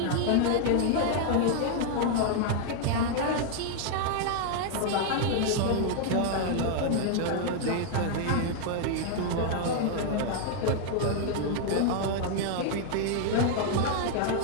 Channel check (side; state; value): both; different; correlation 0.00